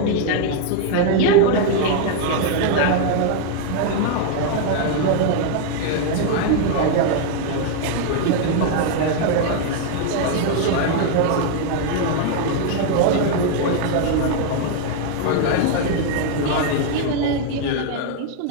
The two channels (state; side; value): different; both; correlation 0.00